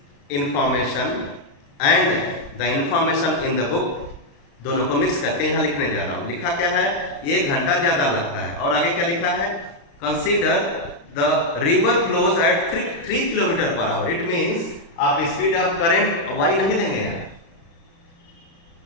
information and the information in the book, दोनों को मिक्स करके यहाँ लिखने जा रहा हूँ। लिखा क्या है, 1 घंटा ज्यादा लगता है, और आगे क्या लिखा है, consider the river flows at 3 kilometres per hour. It means आप स्पीड ऑफ करंट y नहीं लेंगे यहाँ,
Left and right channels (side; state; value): right; late; 35 ms